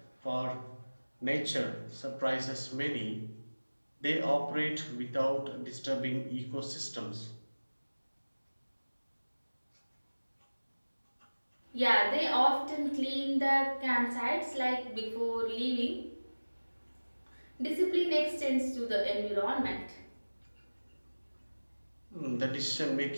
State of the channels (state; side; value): inverted; both; correlation -1.00